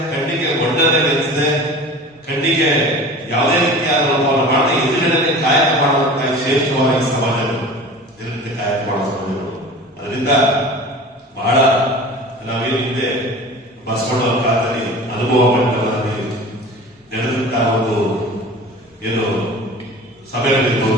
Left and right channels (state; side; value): normal; both; correlation 0.38